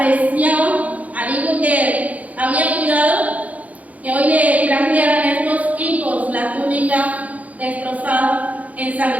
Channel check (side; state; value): left; late; 0.072 ms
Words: al hijo que había cuidado, que hoy le trajeran estos hijos la túnica destrozada,